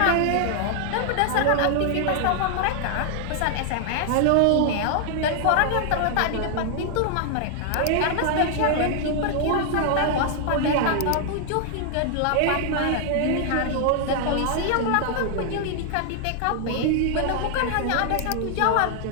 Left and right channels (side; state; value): both; different; correlation 0.00